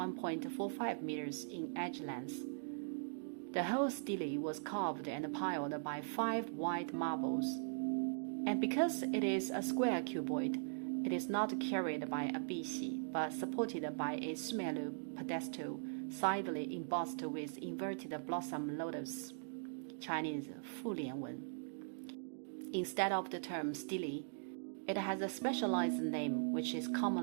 meters in edge length. The whole stele was carved and piled by 5 white marbles. And because it is a square cuboid, it is not carried by a bixi, but supported by a smaller pedestal, sidely embossed with inverted blossom lotus, Chinese 复连纹. Instead of the term stele, it has a specialized name which is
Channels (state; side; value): silent; left; digital silence